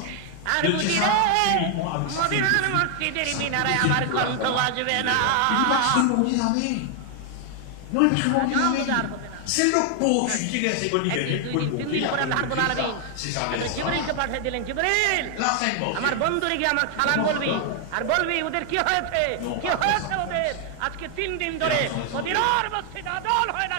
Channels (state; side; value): different; both; correlation 0.00